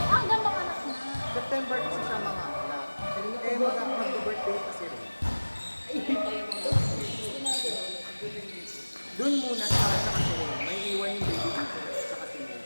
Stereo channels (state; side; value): inverted; both; correlation -1.00